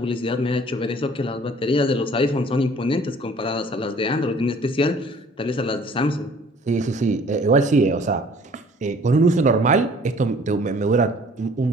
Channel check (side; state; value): both; normal; correlation 0.53